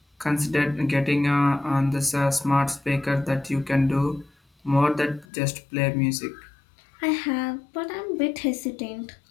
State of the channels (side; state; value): right; drops out; at 5.2 s